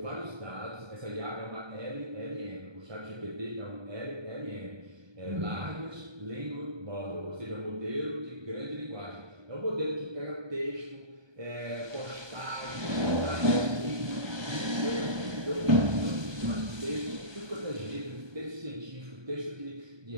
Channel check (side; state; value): left; late; 1.2 ms